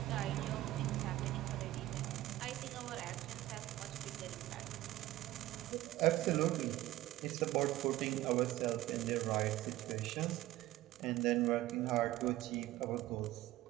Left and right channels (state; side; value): quieter; left; 15.9 dB